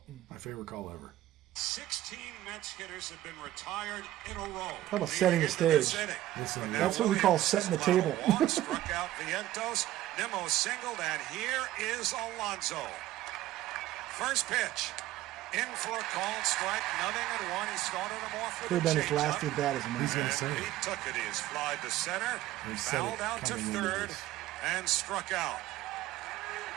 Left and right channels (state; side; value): quieter; left; 14.7 dB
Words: My favorite call ever. 16 Mets hitters have been retired in a row. Talk about setting the stage. Listen, That's what we call setting the table. Struck out Vientos. Nimmo singled, and here is Alonso. First pitch. In for a called strike. Nothing at one. He started him off with Could have been his changeup. last at bat as a He's man. going to say He it. took it. He flied to center, He said fouled it out to coming into third, this. and struck out.